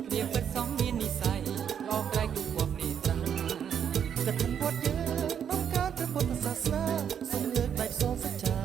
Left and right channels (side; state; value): left; quieter; 8.4 dB